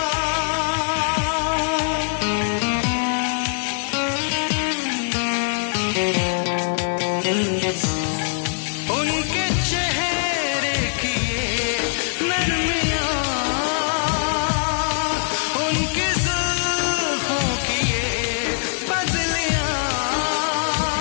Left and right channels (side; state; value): right; silent; digital silence